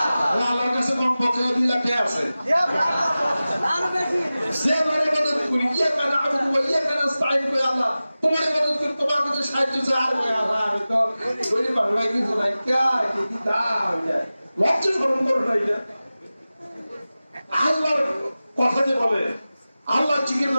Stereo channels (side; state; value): both; inverted; correlation -0.96